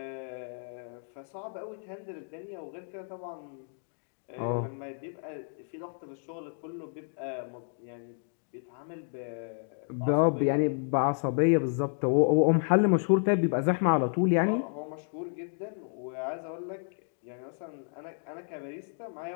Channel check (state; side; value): silent; right; digital silence